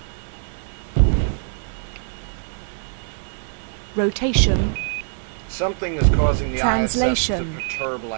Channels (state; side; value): silent; left; digital silence